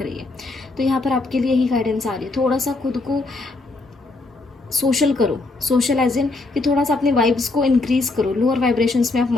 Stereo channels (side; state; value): right; quieter; 3.3 dB